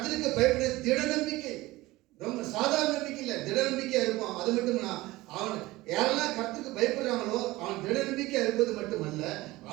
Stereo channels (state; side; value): quieter; left; 19.2 dB